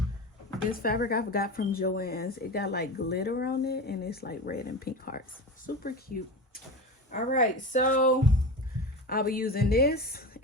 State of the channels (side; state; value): both; normal; correlation 0.27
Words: this fabric I got from Joann's. It got like glitter on it and it's like red and pink hearts. Super cute. All right, so I'll be using this.